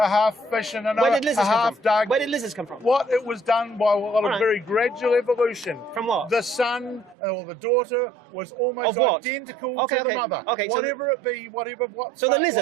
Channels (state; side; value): drops out; left; at 7.2 s